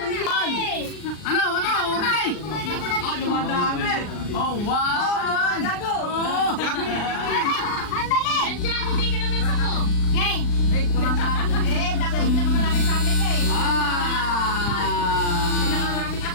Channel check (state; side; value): late; right; 39 ms